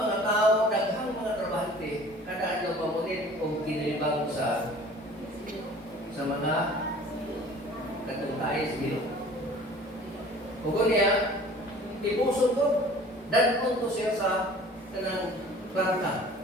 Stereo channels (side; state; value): both; normal; correlation 0.47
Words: tao, daghang mga trabahante, kada ano pamunit o kinilibang sa mga katungkay sa bilog. Ugo niya, ipuso to, danon to siya sa kanang planta.